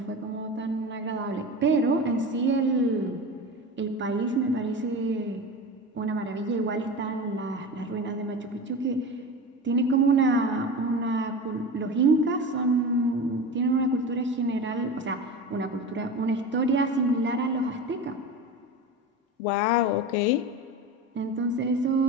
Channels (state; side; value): normal; both; correlation 0.28